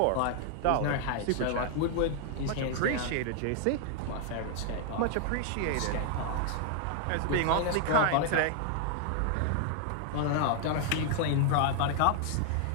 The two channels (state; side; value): different; both; correlation 0.00